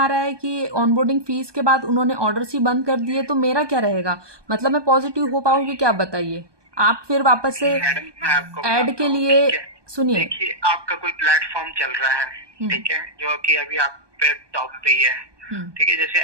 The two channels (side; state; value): left; late; 1.2 ms